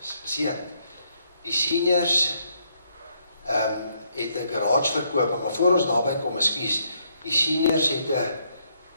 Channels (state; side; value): inverted; both; correlation -0.72